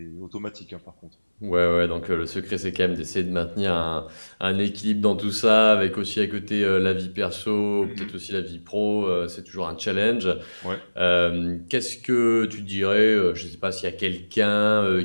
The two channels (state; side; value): inverted; both; correlation -1.00